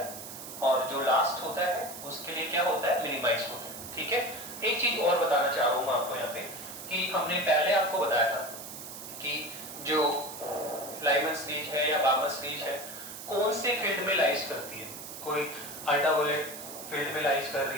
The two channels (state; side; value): noise; right; hiss, 11 dB below the sound